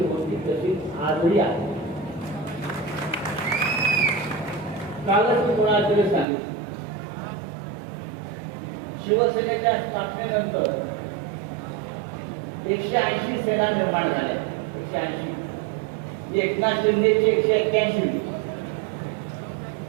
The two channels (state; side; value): drops out; left; at 6.2 s